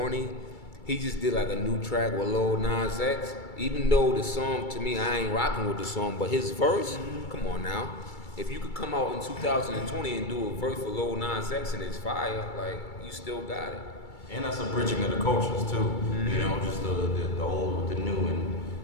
he just did like a new track with Lil Nas X. Even though the song, to me, I ain't rocking with the song, but his verse, come on now. If you could come out in 2020 and do a verse for Lil Nas X and it's fire, like, you still got it. And that's a bridging of the cultures too. You know, just the old with the new and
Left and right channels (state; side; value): late; right; 2.3 ms